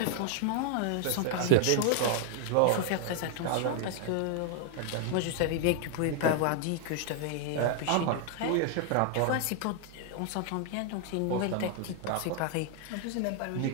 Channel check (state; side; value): different; both; correlation 0.00